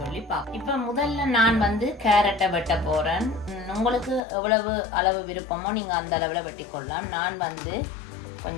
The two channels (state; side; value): drops out; right; at 4.2 s